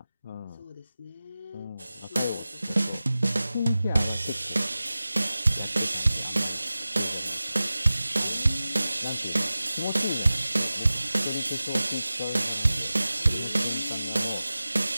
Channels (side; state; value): both; inverted; correlation -0.96